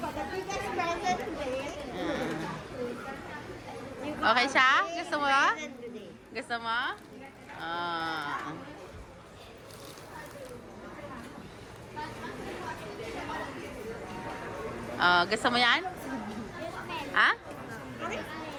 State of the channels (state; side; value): identical; both; correlation 1.00